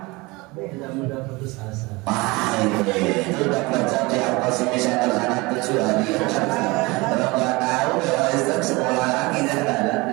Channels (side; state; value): left; quieter; 23.9 dB